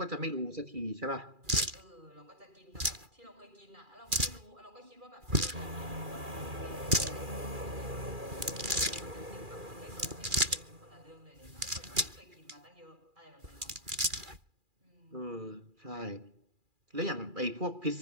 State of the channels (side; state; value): left; late; 2.4 ms